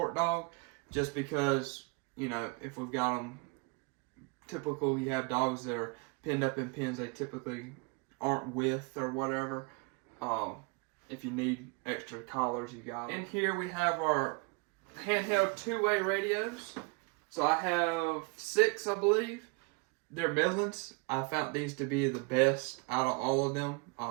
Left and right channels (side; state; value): left; quieter; 31.0 dB